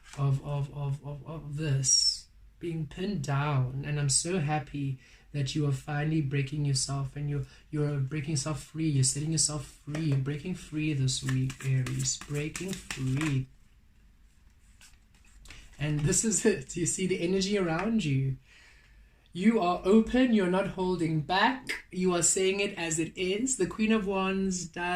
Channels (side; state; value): both; identical; correlation 1.00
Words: this being pinned down. And I'm so happy that you are finally breaking yourself, and you're breaking yourself free. You're setting yourself free. You're breaking free this week, Aries. Breaking free. And this is it. You see the energy around you. You are open. You're not holding back. You are saying it as it is. The Queen of Wands